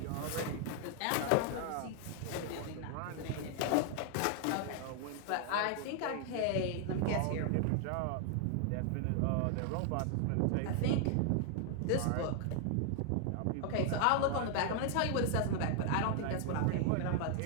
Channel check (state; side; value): different; both; correlation 0.00